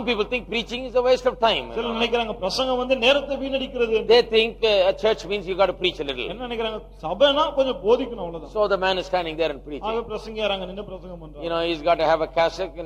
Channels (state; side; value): identical; both; correlation 1.00